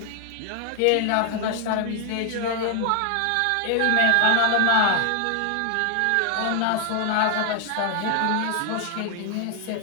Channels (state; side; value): different; both; correlation 0.00